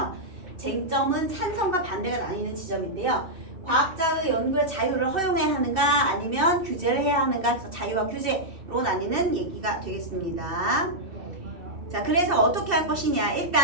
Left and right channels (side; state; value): left; late; 2.7 ms